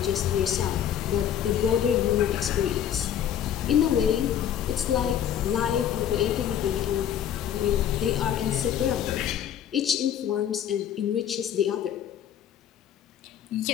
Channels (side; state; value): right; quieter; 9.8 dB